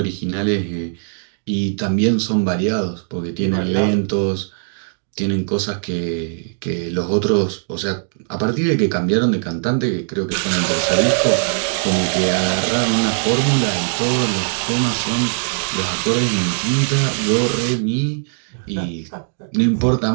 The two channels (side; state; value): left; silent; digital silence